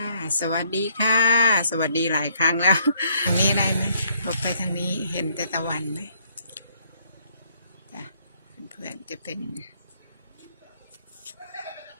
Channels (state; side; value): inverted; both; correlation -0.67